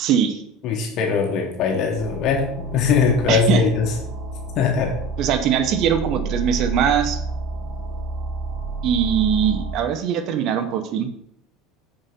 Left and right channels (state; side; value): normal; both; correlation 0.34